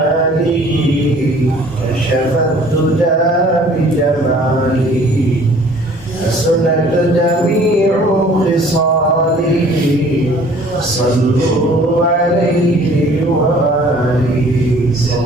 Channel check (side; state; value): both; normal; correlation 0.53